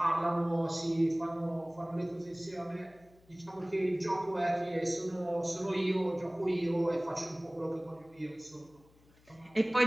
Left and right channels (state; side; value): noise; left; hum, 29 dB below the sound